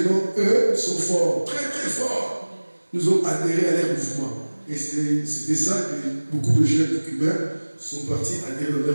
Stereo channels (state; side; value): inverted; both; correlation -1.00